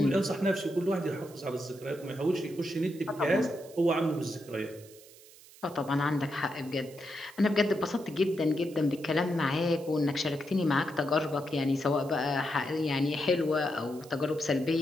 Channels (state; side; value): noise; right; hiss, 22 dB below the sound